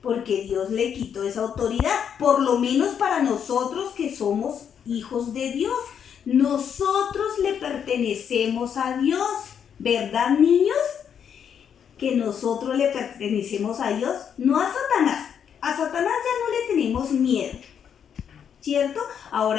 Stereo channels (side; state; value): right; quieter; 8.1 dB